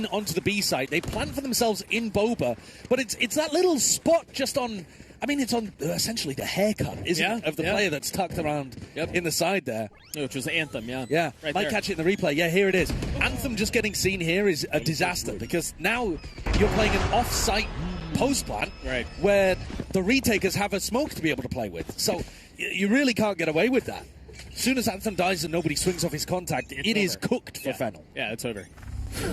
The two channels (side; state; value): both; identical; correlation 1.00